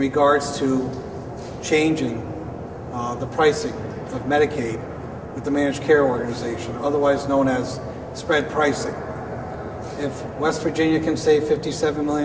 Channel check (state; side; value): identical; both; correlation 1.00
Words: to changing the pricing of Medicaid with the managed care organization, otherwise known as spread pricing. If West Virginia can save $57